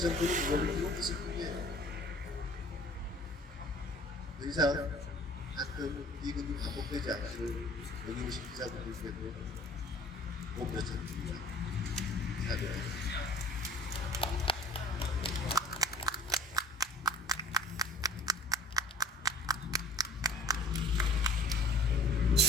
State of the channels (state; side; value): normal; both; correlation 0.49